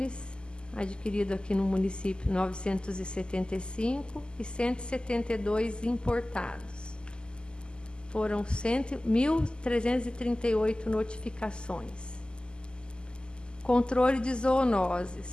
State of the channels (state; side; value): late; right; 0.048 ms